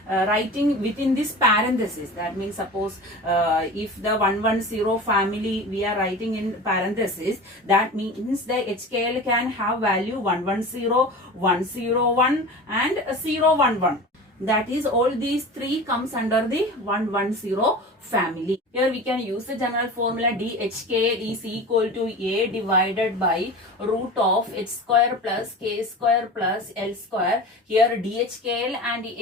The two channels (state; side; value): normal; both; correlation 0.34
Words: writing within this parenthesis. That means suppose if the 110 family we are writing in parenthesis, that means the HKL can have value 110, 101 and 011. That is, all these three comes under the 110 family. Here we can use the general formula DHK is equal to A divided by root of H square plus K square plus L square. Here DHKL and